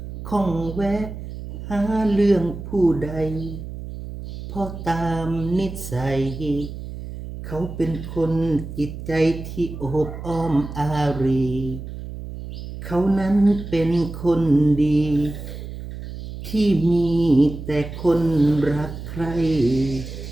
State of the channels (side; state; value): right; noise; hum, 10 dB below the sound